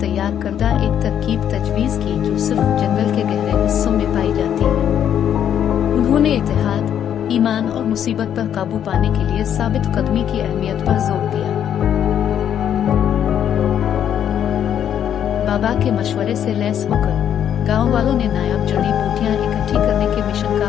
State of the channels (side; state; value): right; quieter; 9.5 dB